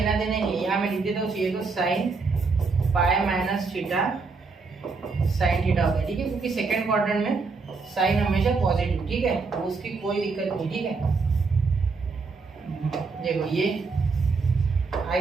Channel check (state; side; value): quieter; left; 4.4 dB